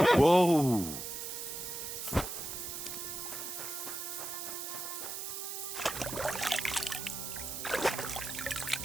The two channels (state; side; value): noise; right; hiss, 6 dB below the sound